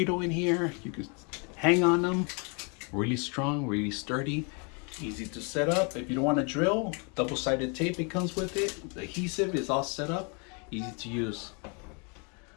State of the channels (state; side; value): quieter; right; 35.0 dB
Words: in here. You can hang on them. Really strong, really sturdy. Easy to set up. If you don't want to drill, double-sided tape it comes with it. The adhesive is all set up. Easy to use.